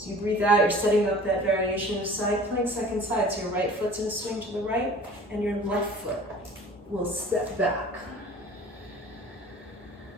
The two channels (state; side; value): normal; both; correlation 0.45